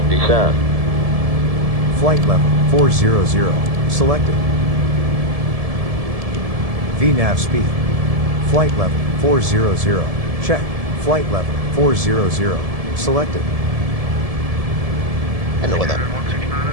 descend. Flight level 400. Selected. VNAV speed. Flight level 400. Check. Flight level 400. Selected. I know what that.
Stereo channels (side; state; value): left; late; 1.7 ms